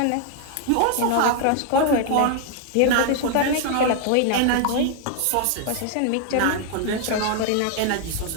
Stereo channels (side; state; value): both; different; correlation 0.00